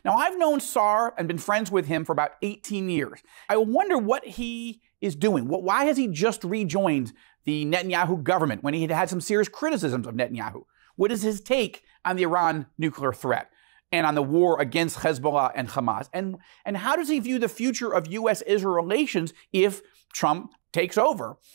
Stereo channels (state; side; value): silent; left; digital silence